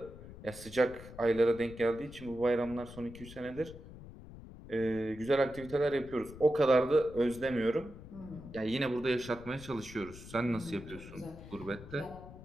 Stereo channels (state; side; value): noise; left; rumble, 15 dB below the sound